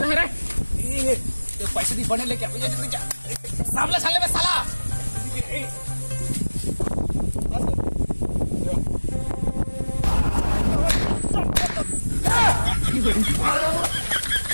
है रे तो पैसे दी बने लेके सामने साले में साला।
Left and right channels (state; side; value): inverted; both; correlation -1.00